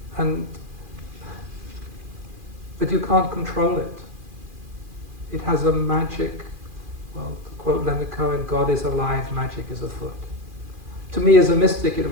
But you can't control it. It has a magic, well, to quote Leonard Cohen, God is alive, magic is afoot. To me, as a mystic, it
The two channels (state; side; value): late; left; 2.4 ms